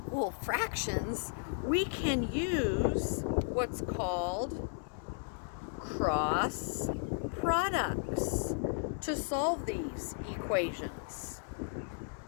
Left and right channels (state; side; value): silent; right; 55 dB below the other